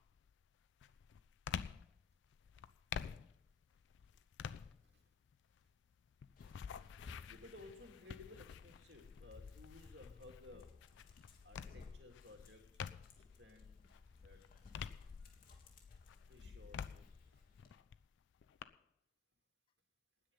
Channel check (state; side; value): quieter; right; 6.5 dB